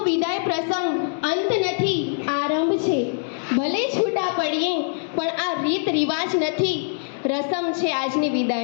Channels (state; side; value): silent; right; digital silence